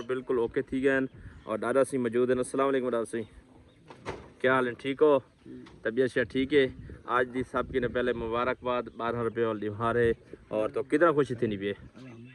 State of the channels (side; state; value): both; identical; correlation 1.00